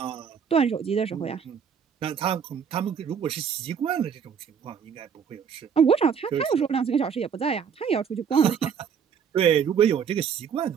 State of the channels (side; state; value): left; quieter; 7.2 dB